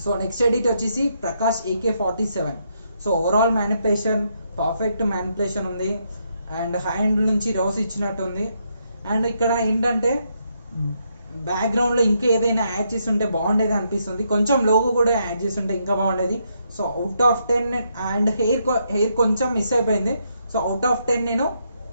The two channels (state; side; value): inverted; both; correlation -0.77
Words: సో నెక్స్ట్ ఎడిట్ వచ్చేసి Prakash AK47. So overall manipulation perfect manipulation ఉంది. అండ్ హ్యాండ్ నుంచి రోస్ ఇచ్చినట్టుంది. అండ్ ఇక్కడ ఏంటంటే బ్యాక్గ్రౌండ్ లో ఇంకా ఏదైనా యాడ్ చేసి ఉంటే బాగుండేది అనిపిస్తుంది. కొంచెం లోగో కూడా యాడ్ చేసి ఉంటే ఇంకా బాగుండేది. So out of 10 and hair కొంచెం మిస్ అయిపోయింది. సో అవుట్ ఆఫ్ 10 నేను